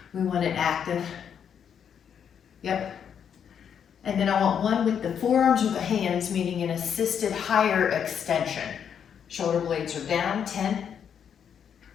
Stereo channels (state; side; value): quieter; right; 8.0 dB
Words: we want it active. Yep. And then I want one with the forearms or the hands, meaning an assisted higher extension. Shoulder blades are down. 10.